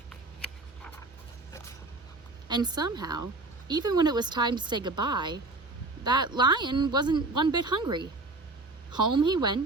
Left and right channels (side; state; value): left; quieter; 3.2 dB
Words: And somehow, even when it was time to say goodbye, that lion wasn't one bit hungry. Home he